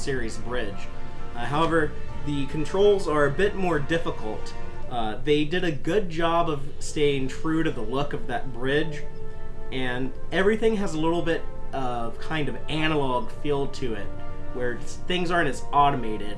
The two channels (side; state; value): both; identical; correlation 1.00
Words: bridge. However, the controls are a bit more difficult. They did a good job of staying true to the look of that bridge, and everything has a little bit of kind of analog feel to it, where things aren't as